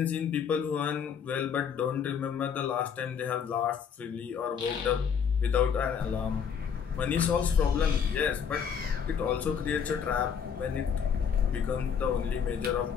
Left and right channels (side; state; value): right; quieter; 7.1 dB